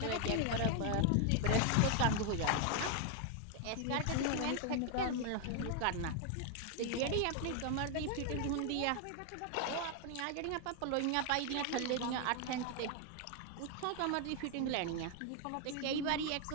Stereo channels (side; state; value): both; different; correlation 0.00